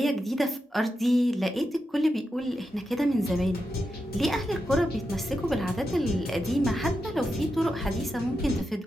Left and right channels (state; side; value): normal; both; correlation 0.88